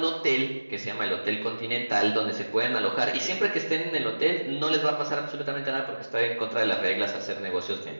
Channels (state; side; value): inverted; both; correlation -1.00